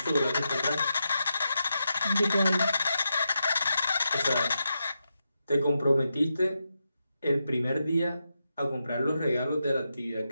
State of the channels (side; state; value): both; inverted; correlation -0.87